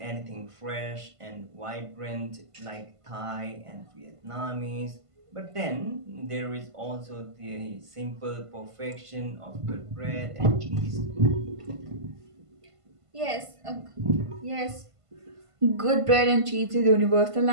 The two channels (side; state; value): left; late; 1.5 ms